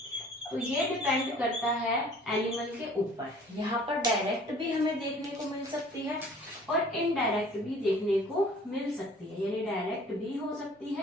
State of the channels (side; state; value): both; normal; correlation 0.51